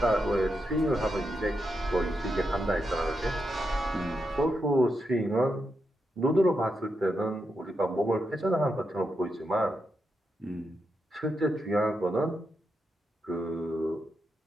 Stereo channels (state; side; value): normal; both; correlation 0.85